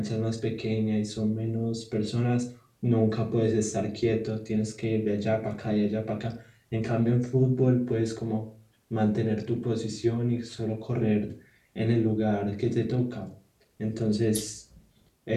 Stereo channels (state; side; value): identical; both; correlation 1.00